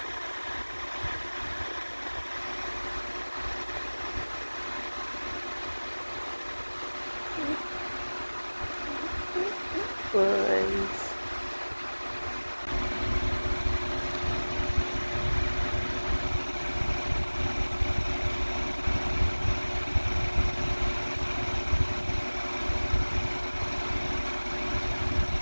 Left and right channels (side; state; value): both; inverted; correlation -1.00